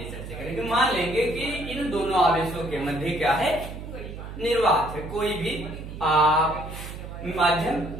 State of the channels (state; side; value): noise; right; hum, 10 dB below the sound